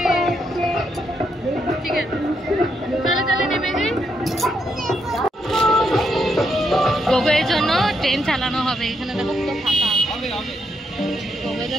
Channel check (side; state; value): both; normal; correlation 0.78